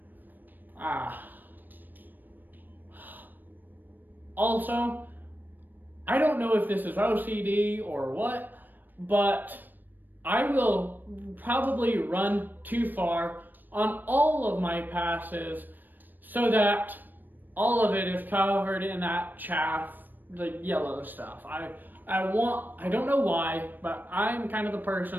Also, I don't know if this is OCD or what, but I will probably run too far on all of my passes so that all of it is covered in that chaff, the yellow stuff. I don't know why, but I'm kind of the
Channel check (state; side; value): late; left; 0.090 ms